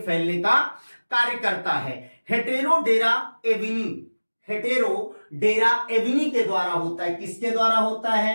का कार्य करता है। हेटेरोडेरा एविनी, हेटेरोडेरा एविनी के द्वारा होता है। किसके द्वारा होता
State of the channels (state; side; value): inverted; both; correlation -1.00